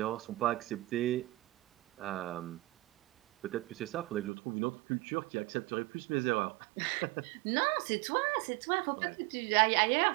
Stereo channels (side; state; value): left; drops out; at 4.3 s